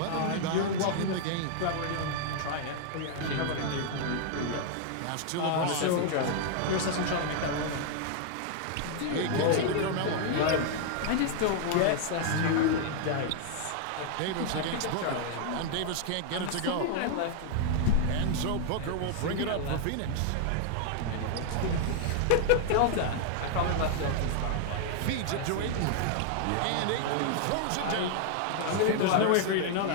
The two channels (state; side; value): different; both; correlation 0.00